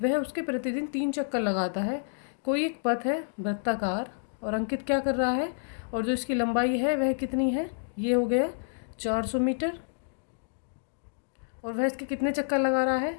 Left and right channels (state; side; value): silent; right; digital silence